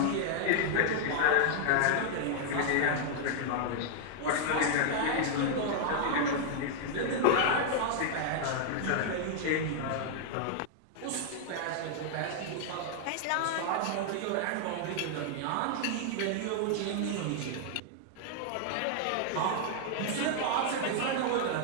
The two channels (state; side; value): different; both; correlation -0.01